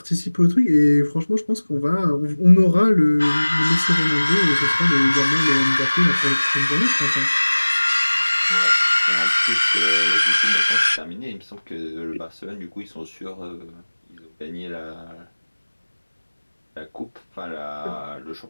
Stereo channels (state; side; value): inverted; both; correlation -1.00